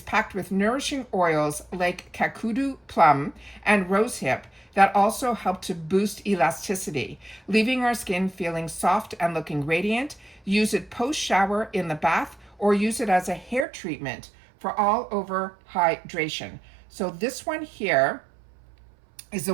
packed with nourishing oils like kakudu plum and rosehip that also help to boost elasticity, leaving our skin feeling soft and looking radiant. Use it post-shower in the bath, or use it as a hair treatment for all over hydration. So this one here is the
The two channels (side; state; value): left; drops out; at 13.7 s